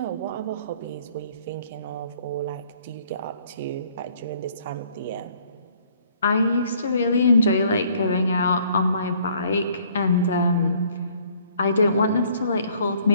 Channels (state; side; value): inverted; both; correlation -0.61